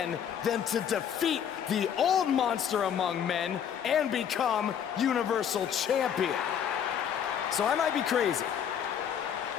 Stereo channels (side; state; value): right; quieter; 8.6 dB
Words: than to defeat the old monster among men and become Universal Champion? So I might be crazy,